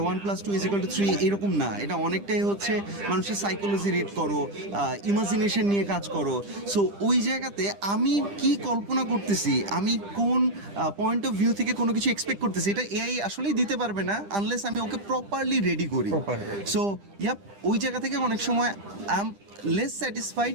এরকম না। এটা অনেকটাই হচ্ছে মানুষের সাইকোলজি রিড করো, ইমাজিনেশন নিয়ে কাজ করো। সো ওই জায়গাতে আমি কি কল্পনা করতেছি, আমি কোন পয়েন্ট অফ ভিউ থেকে কোনো কিছু এক্সপেক্ট করতেছি, এটা এআই আসলেই দিতে পারবে না আনলেস আমি ওকে প্রপারলি রেডি করি। সো ওই জায়গা থেকে অনেক সময় I am less satisfied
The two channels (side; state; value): left; late; 10 ms